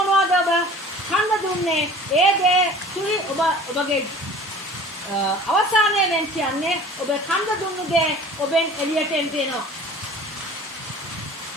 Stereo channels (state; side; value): normal; both; correlation 0.44